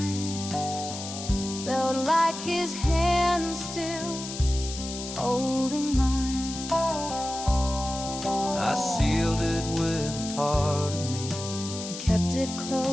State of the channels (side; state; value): left; noise; hiss, 9 dB below the sound